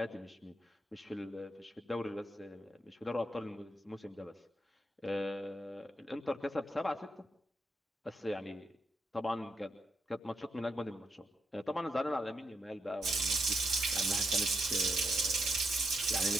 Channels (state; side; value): normal; both; correlation 0.81